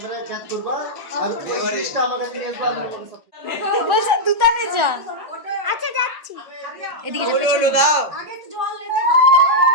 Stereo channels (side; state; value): left; late; 1.7 ms